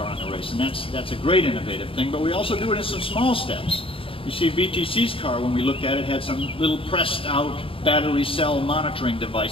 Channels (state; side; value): late; right; 0.26 ms